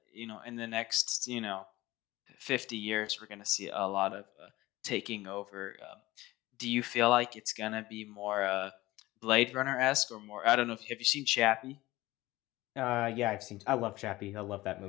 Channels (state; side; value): quieter; right; 18.4 dB